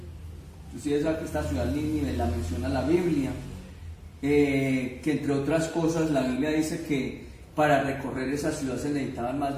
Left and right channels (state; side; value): identical; both; correlation 1.00